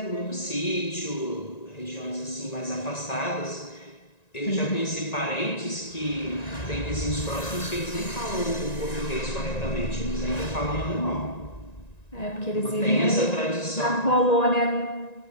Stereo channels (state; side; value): late; right; 1.9 ms